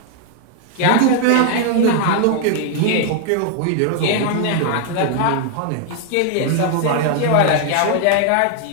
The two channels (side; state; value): both; different; correlation 0.00